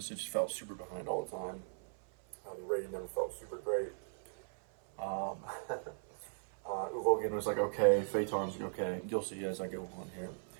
It just felt super behind all the time. The rating never felt super great. Uvogan was like okay, Phaeton's like okay. You'll see as I go on here.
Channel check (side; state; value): left; silent; 52 dB below the other